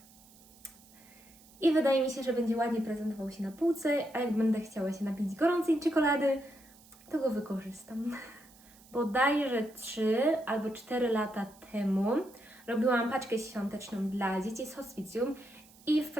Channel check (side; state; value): right; noise; hiss, 25 dB below the sound